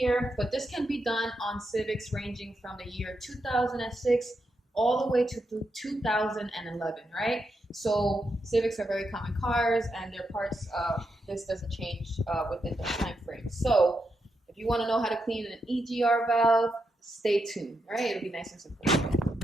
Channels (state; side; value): normal; both; correlation 0.84